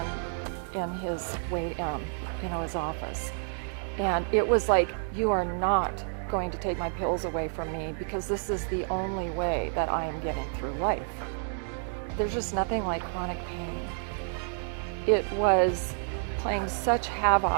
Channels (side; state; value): left; silent; 58 dB below the other